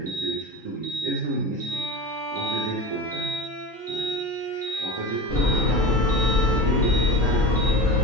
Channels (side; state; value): both; normal; correlation 0.28